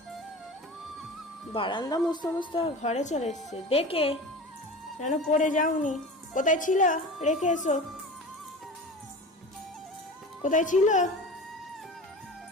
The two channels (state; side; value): normal; both; correlation 0.33